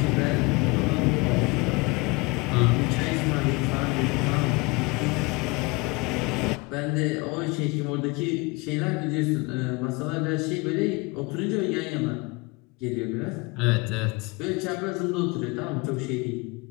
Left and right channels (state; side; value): quieter; right; 26.5 dB